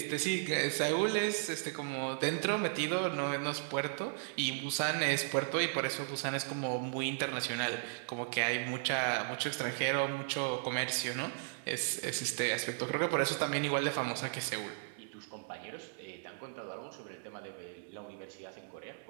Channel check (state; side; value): silent; left; 54 dB below the other